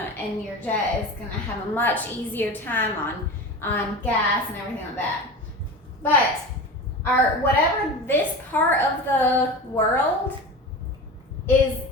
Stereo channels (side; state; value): both; normal; correlation 0.30